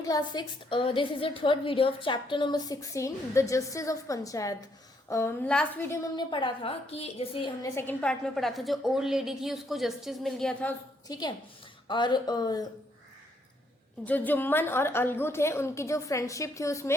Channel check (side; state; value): both; normal; correlation 0.72